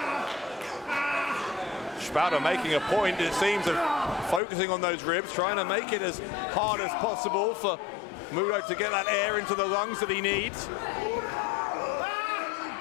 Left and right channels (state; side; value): drops out; right; at 4.4 s